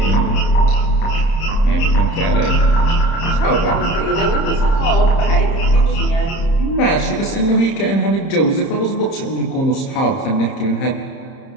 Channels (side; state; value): right; late; 30 ms